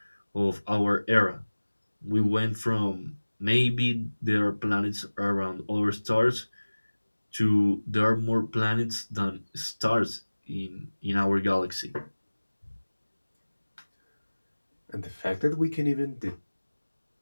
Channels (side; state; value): both; inverted; correlation -1.00